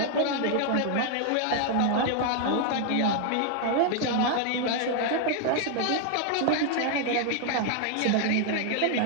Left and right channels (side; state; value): both; different; correlation 0.00